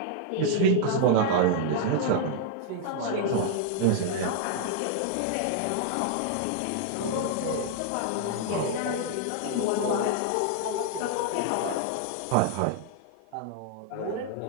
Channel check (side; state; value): both; different; correlation 0.00